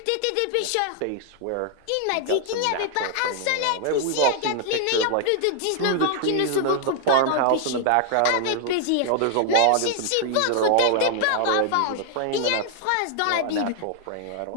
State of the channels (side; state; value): both; different; correlation 0.00